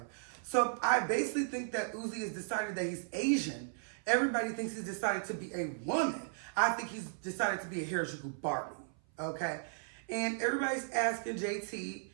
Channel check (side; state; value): left; silent; 54 dB below the other